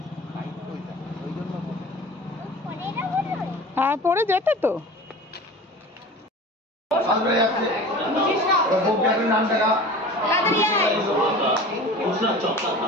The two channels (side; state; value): both; normal; correlation 0.38